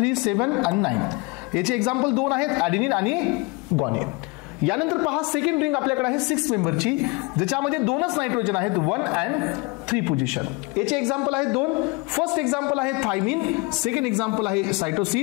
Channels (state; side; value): quieter; right; 27.3 dB